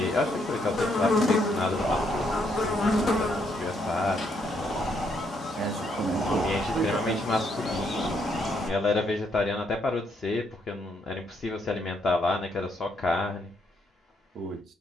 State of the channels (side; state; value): both; normal; correlation 0.74